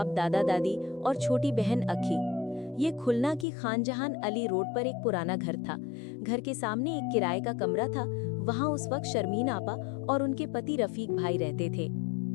दादा दादी और छोटी बहन अखी। ये खुलना की खानजहान अली रोड पर एक पुराना घर था। घर के सामने एक किराए का कमरा था। वहाँ उस वक्त शर्मीन आपा और उनके पति रफीक भाई रहते थे।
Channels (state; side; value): drops out; right; at 3.5 s